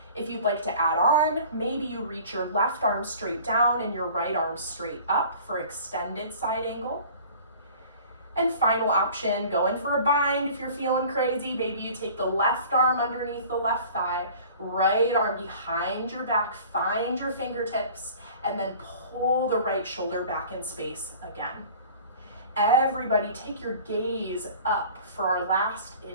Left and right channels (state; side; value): inverted; both; correlation -0.46